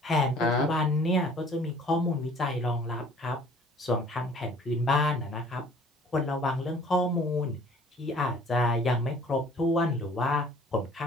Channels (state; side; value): normal; both; correlation 0.53